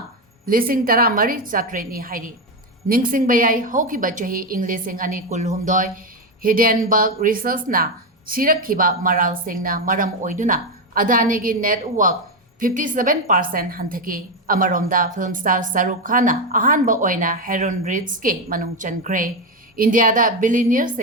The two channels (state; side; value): normal; both; correlation 0.10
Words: Lising tara mari chatreni hairi. Ningsing bayai hoki bachahi Englishing ani kulhumdoi Hindenburg research na sirak kiba maral sing na maram oiduna Adani gi network 57% hanthaki amaromda film star Saruk Khana ahanba oina Harun Rich ke manung chankre India da billionaire